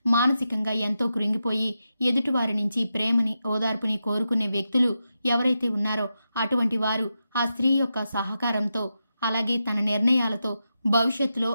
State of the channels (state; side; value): inverted; both; correlation -0.88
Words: మానసికంగా ఎంతో కృంగిపోయి ఎదుటివారి నుంచి ప్రేమని, ఓదార్పుని కోరుకునే వ్యక్తులు ఎవరైతే ఉన్నారో అటువంటి వారు ఆ స్త్రీ యొక్క సహకారంతో, అలాగే తన నిర్ణయాలతో భవిష్యత్తులో